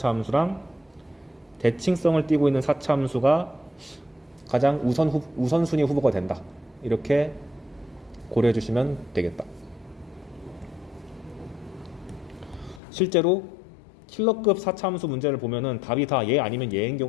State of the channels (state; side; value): drops out; right; at 12.8 s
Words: 대칭성을 띠고 있는 사차함수가 가장 우선순위 후보가 된다. 이렇게 고려해 주시면 되겠다. 실제로 킬러급 사차함수 문제를 보면은 답이 다 얘 아니면 얘인